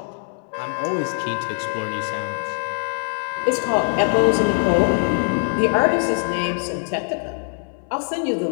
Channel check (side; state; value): right; silent; 64 dB below the other